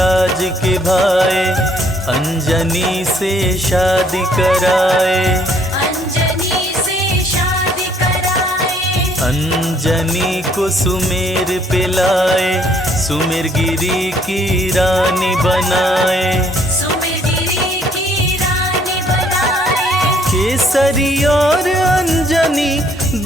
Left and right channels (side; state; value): both; normal; correlation 0.64